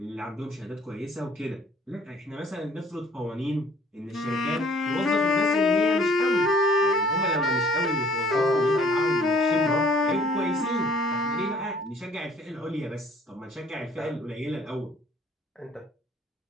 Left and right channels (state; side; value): normal; both; correlation 0.56